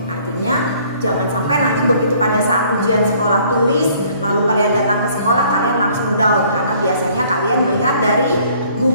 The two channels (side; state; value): both; inverted; correlation -0.59